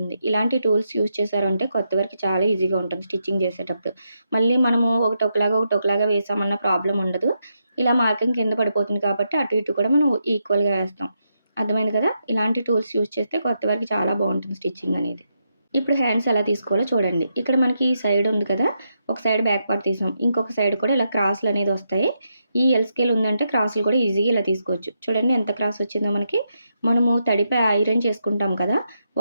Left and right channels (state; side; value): inverted; both; correlation -0.82